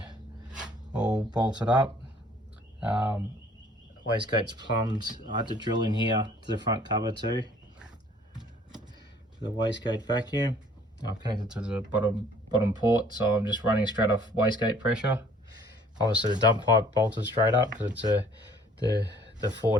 all bolted up. wastegate's plumbed. I had to drill in here to the front cover too, for the wastegate vacuum. I've connected to the bottom port, so I'm just running straight off wastegate pressure. Obviously the dump pipe bolted straight up because it's the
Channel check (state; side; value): normal; both; correlation 0.56